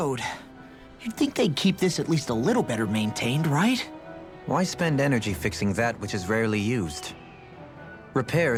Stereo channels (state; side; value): identical; both; correlation 1.00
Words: You'd think they'd keep this at least a little better maintained, right? Why spend energy fixing that which is rarely used?